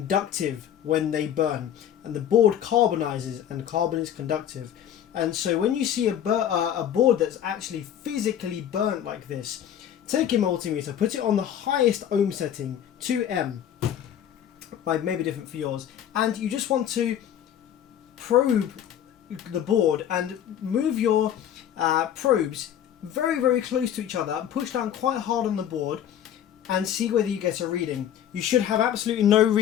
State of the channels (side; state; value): right; quieter; 10.1 dB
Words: when they burn, and the board carbonizes, and carbon is conductive. And so when you see a board that's actually physically burnt like this, take your multimeter, put it on the highest ohm setting, 2M, maybe different for yours, and you just want to probe the board and move your probes very, very close to each other, push down quite hard on the board and see whether you get a reading. You should have absolutely no